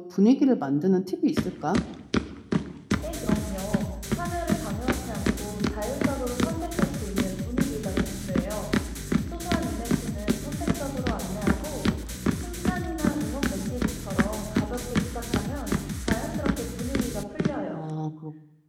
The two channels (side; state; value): both; identical; correlation 1.00